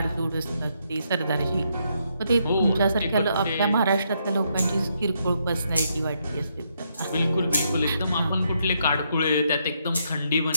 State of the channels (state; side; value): inverted; both; correlation -0.76